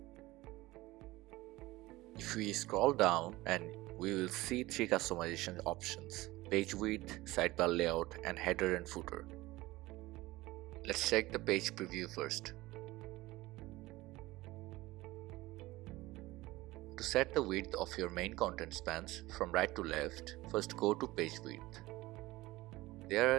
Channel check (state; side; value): quieter; left; 19.1 dB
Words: If we scroll down, and we will see three customization options: page width, sidebar layout, and header and footer. Let's check the page preview first. To set the width of your main content spans from right to left, first go to page width. There